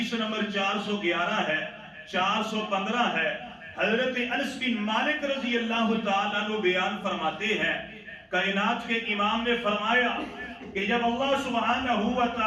نمبر 411 ہے، 415 ہے۔ حضرت انس بن مالک رضی اللہ تعالیٰ عنہ بیان فرماتے ہیں، کائنات کے امام نے فرمایا کہ جب اللہ سبحانہ و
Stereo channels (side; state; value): both; identical; correlation 1.00